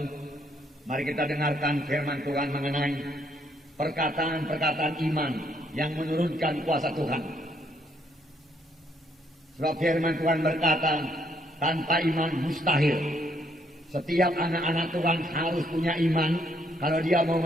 mari kita dengarkan firman Tuhan mengenai perkataan-perkataan iman yang menurunkan kuasa Tuhan. Sebab firman Tuhan berkata, tanpa iman mustahil. Setiap anak-anak Tuhan harus punya iman kalau dia mau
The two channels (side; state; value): both; normal; correlation 0.71